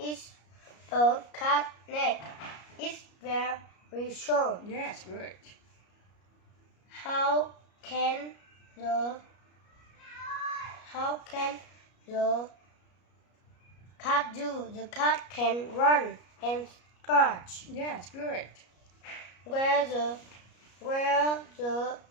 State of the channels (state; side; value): late; right; 33 ms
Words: a cat neck? It's very short. Yes, good. How can the cat do? The cat can run and scratch. Yes, good. Where the